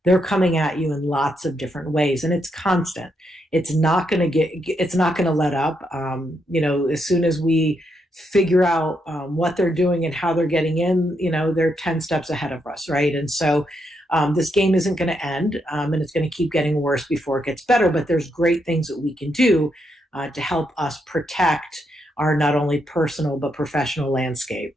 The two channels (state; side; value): normal; both; correlation 0.79